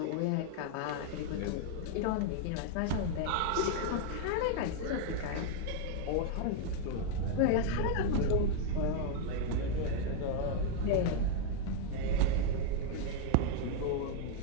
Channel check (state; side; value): different; both; correlation 0.00